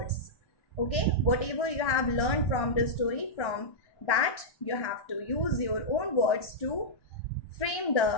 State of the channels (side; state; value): right; late; 1.3 ms